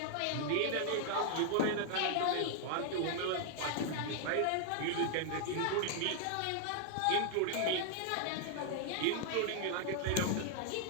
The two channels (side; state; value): both; different; correlation 0.00